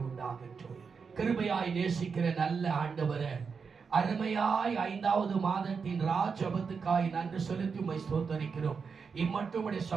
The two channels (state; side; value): quieter; left; 5.6 dB